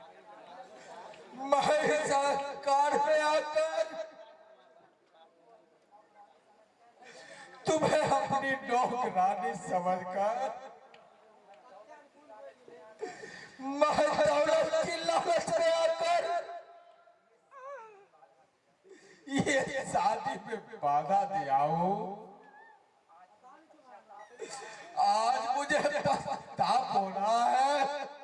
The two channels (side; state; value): both; identical; correlation 1.00